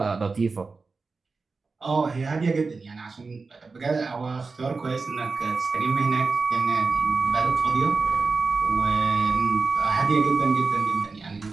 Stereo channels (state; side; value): quieter; left; 4.2 dB